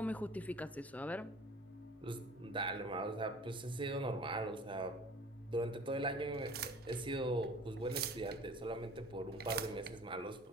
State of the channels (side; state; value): both; normal; correlation 0.46